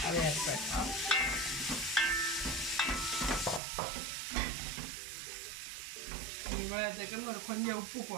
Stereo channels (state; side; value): drops out; left; at 3.6 s